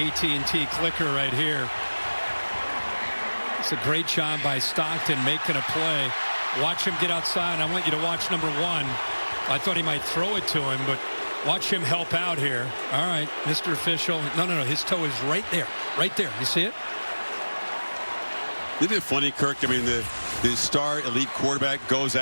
clicker right here. It's a great job by Stockton making a play. Watch him get outside. I want you to watch number 1. I thought he might throw it to him, but watch him help out here. All right, Mr. Official. No. His toe is right there. Right there. You see it? Isn't it funny, Kirk? I mean, the star elite quarterback goes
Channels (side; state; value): both; inverted; correlation -1.00